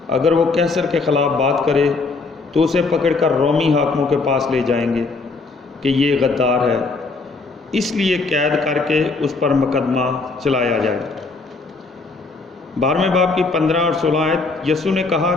اگر وہ قیصر کے خلاف بات کرے تو اسے پکڑ کر رومی حاکموں کے پاس لے جائیں گے کہ یہ غدار ہے، اس لیے قید کر کے اس پر مقدمہ چلایا جائے۔ 12ویں باب کی 15 اور 16 آیت۔ یسوع نے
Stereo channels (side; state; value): right; quieter; 3.9 dB